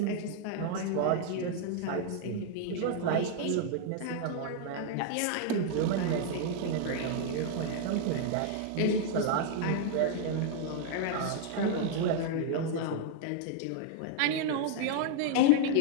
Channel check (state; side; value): different; both; correlation 0.00